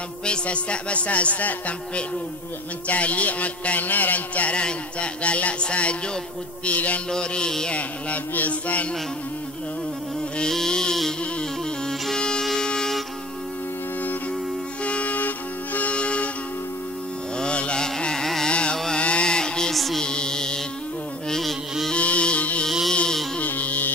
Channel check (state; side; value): noise; right; hum, 25 dB below the sound